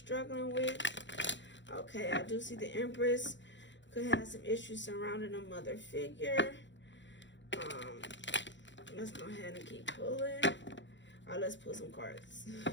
with? Okay, I do see the Empress could have some issues surrounding a mother figure. Let's go ahead and keep pulling. All right, let's pull some cards.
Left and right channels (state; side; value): late; right; 0.53 ms